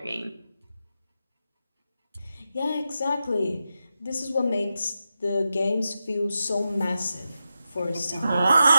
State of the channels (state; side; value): inverted; both; correlation -0.89